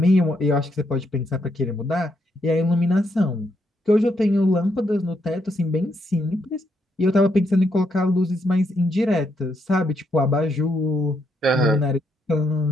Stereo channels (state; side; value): normal; both; correlation 0.77